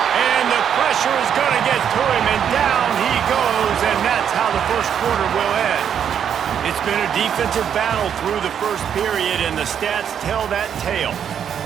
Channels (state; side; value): quieter; left; 8.5 dB